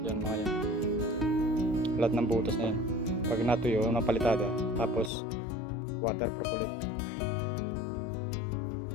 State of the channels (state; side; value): drops out; right; at 5.1 s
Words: Yan mga yan, lahat ng butas na yan. Pag natuyo ng palitada, tapos waterproof ulit.